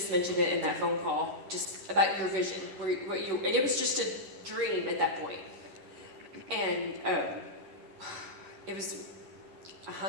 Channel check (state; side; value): late; left; 11 ms